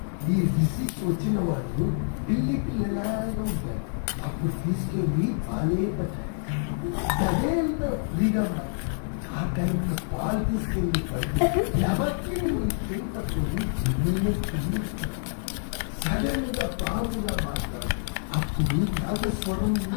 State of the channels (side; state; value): right; silent; digital silence